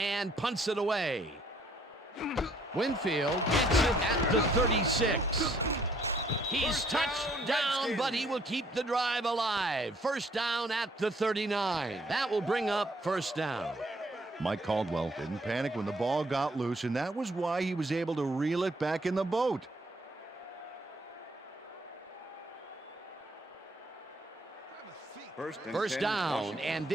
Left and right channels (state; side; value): normal; both; correlation 0.65